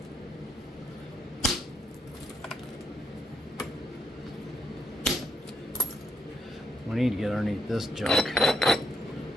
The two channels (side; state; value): both; normal; correlation 0.76